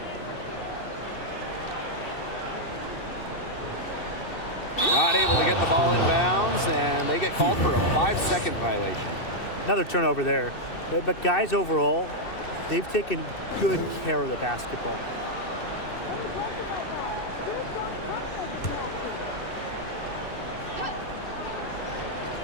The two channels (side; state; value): right; late; 2.6 ms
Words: Not able to get the ball in bounds, and they get called for a 5-second violation. Another turnover there. But guys, overall, they've taken good care of the basketball.